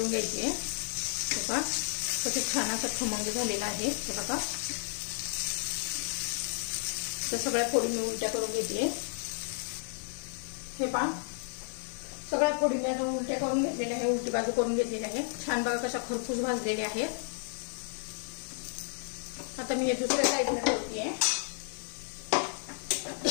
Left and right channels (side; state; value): right; silent; 56 dB below the other